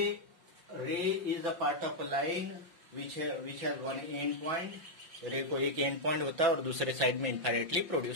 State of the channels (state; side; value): late; left; 5.7 ms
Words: is a part of a line which has one end point. Ray को एक एंड पॉइंट होता है और दूसरे साइड में इनफाइनाइटली